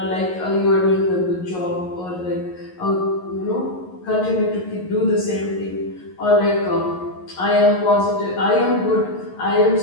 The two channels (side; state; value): right; late; 11 ms